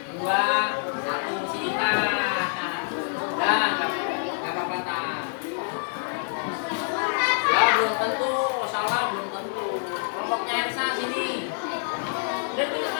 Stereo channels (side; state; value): right; silent; 61 dB below the other